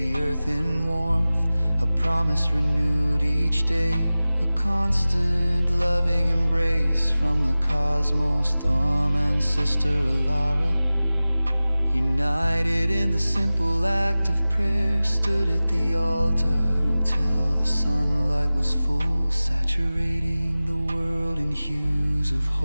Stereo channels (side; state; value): both; inverted; correlation -0.97